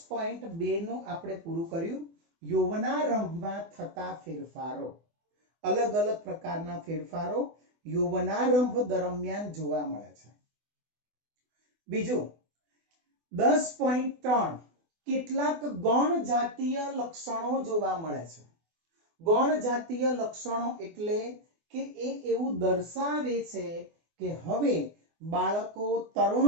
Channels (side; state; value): left; late; 24 ms